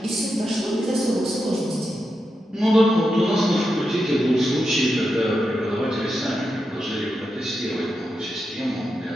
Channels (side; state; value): both; normal; correlation 0.87